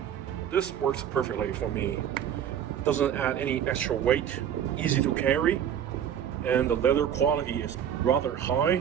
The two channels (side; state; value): left; quieter; 9.4 dB